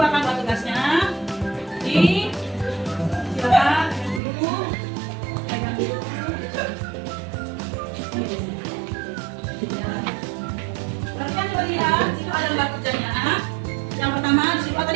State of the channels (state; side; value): drops out; left; at 4.2 s